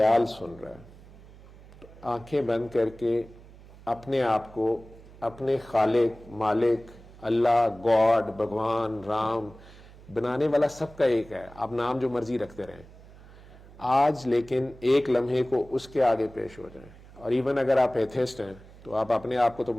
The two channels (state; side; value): noise; right; hum, 21 dB below the sound